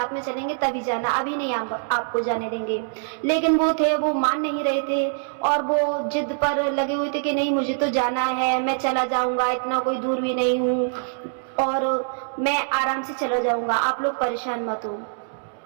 में चलेंगे तभी जाना, अभी नहीं आपको जाने देंगे। लेकिन वो मान नहीं रहे थे और वो जिद पर लगे हुए थे कि नहीं, मुझे तो जाना है, मैं चला जाऊंगा, इतना कोई दूर भी नहीं हूँ और मैं आराम से चला जाऊंगा, आप लोग परेशान मत हो।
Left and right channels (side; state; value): left; silent; digital silence